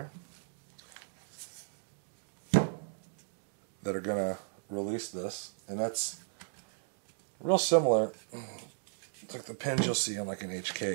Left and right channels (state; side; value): silent; left; digital silence